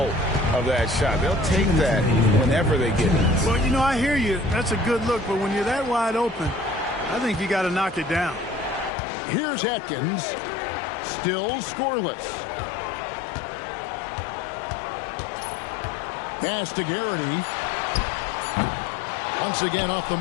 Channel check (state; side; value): drops out; right; at 8.9 s